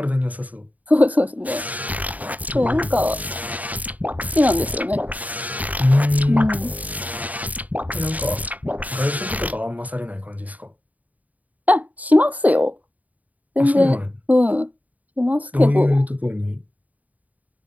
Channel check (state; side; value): late; left; 0.074 ms